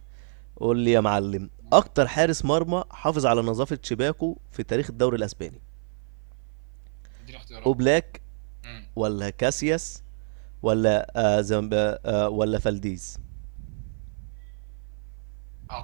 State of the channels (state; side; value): silent; left; 56 dB below the other